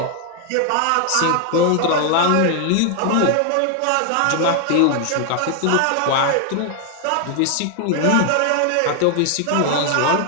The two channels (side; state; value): both; different; correlation 0.00